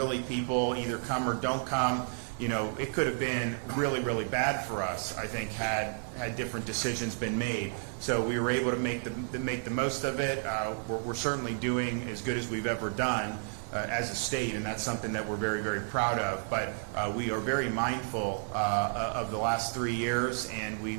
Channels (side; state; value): left; silent; digital silence